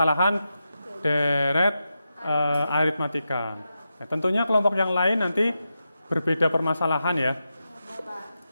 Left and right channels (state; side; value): inverted; both; correlation -0.89